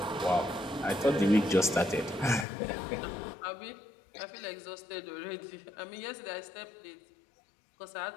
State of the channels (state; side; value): drops out; right; at 2.5 s